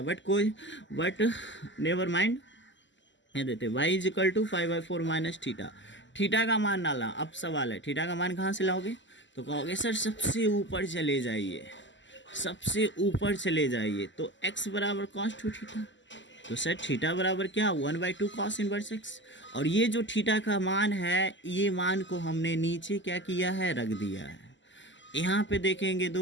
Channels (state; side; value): late; right; 0.54 ms